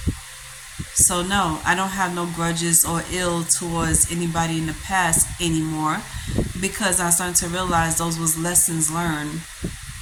So no, I don't have no grudges or ill towards anybody in the past anymore because I started to realize those was lessons learned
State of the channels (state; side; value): identical; both; correlation 1.00